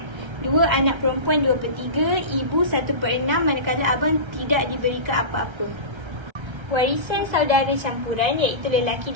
dua anak perempuan 2/3, ibu 1/6, manakala abang tidak diberikan apa-apa. Warisan saudara campuran iaitu lelaki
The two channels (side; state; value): left; late; 1.3 ms